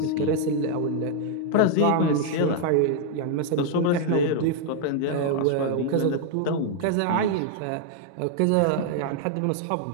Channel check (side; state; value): both; different; correlation 0.00